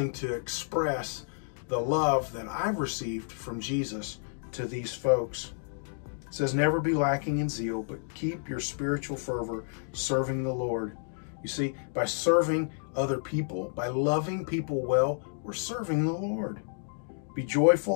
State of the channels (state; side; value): silent; right; digital silence